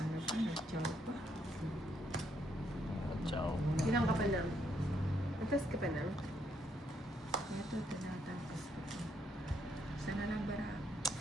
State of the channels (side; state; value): both; normal; correlation 0.74